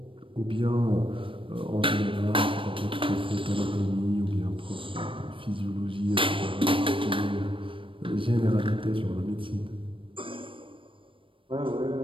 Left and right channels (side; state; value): left; late; 0.25 ms